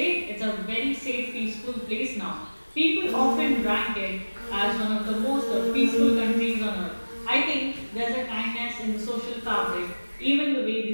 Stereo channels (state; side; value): inverted; both; correlation -1.00